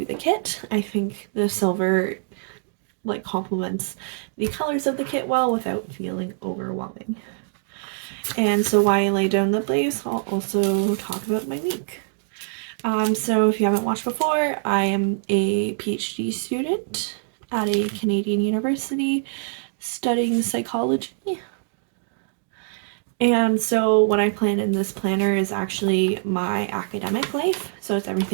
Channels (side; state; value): left; silent; digital silence